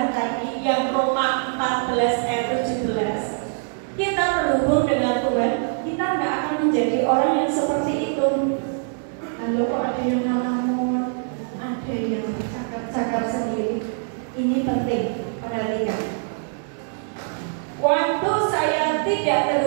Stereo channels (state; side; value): silent; left; 63 dB below the other